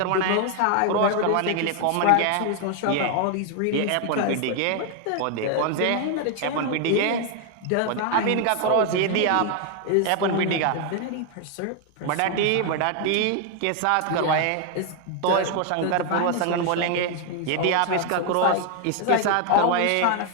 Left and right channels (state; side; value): different; both; correlation 0.01